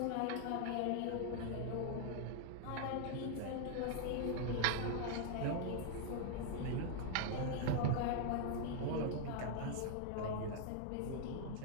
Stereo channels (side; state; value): both; different; correlation 0.00